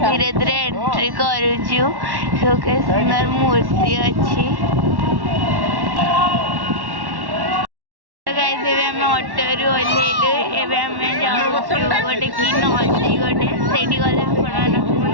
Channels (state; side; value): late; left; 1.1 ms